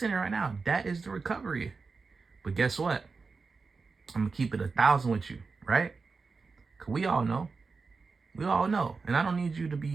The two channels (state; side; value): quieter; left; 4.5 dB